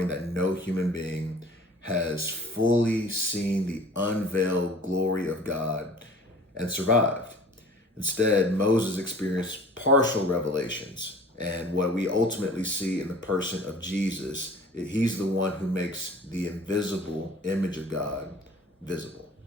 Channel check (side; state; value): both; normal; correlation 0.46